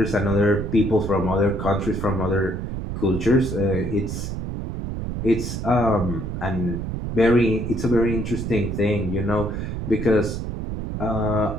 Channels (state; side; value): noise; right; rumble, 4 dB below the sound